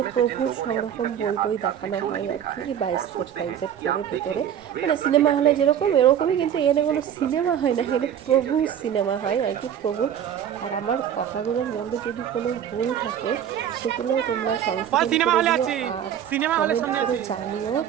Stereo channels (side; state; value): left; quieter; 9.5 dB